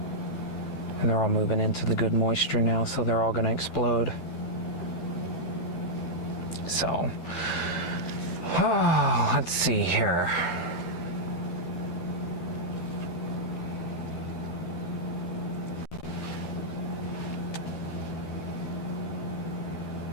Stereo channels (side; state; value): right; late; 13 ms